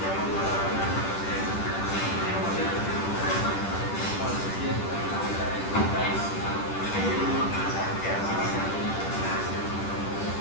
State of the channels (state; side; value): late; right; 10 ms